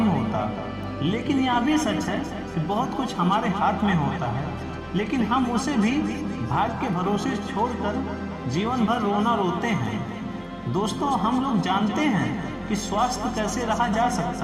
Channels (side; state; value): both; identical; correlation 1.00